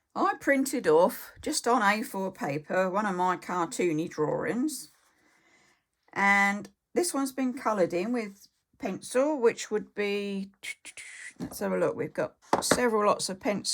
I printed off, just on A4 paper, one of my cartoony drawings. And this one's been coloured in with pencil, which would be, let's have a look, we've got several lots of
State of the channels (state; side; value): identical; both; correlation 1.00